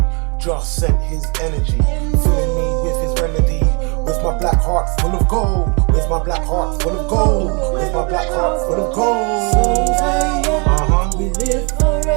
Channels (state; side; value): quieter; left; 32.5 dB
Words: Just sent his energy, filling me with his remedy. With my black heart full of gold. With my black heart full of gold. With my black heart full of gold. We live